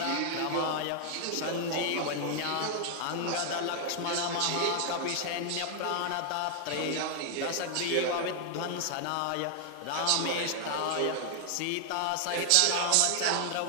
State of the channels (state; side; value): different; both; correlation 0.00